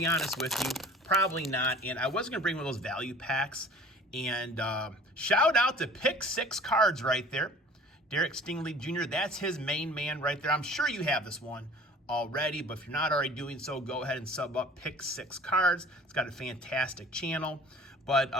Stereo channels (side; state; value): both; normal; correlation 0.47